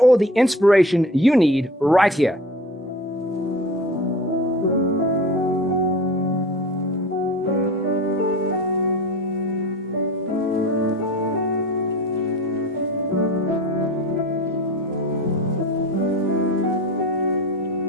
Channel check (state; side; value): normal; both; correlation 0.37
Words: the inspiration you need right here.